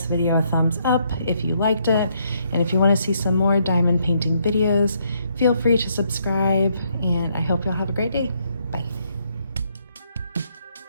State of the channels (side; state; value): both; inverted; correlation -0.73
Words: video a thumbs up if you liked it, and if you want to see some more diamond painting videos, feel free to subscribe, and I hope you'll have a great day.